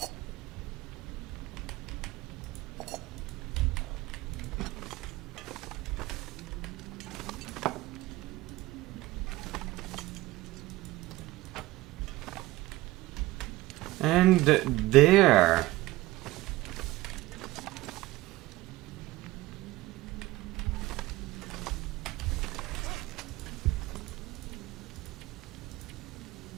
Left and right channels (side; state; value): left; quieter; 18.5 dB